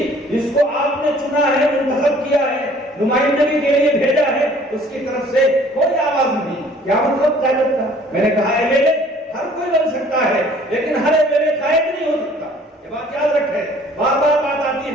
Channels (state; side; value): normal; both; correlation 0.54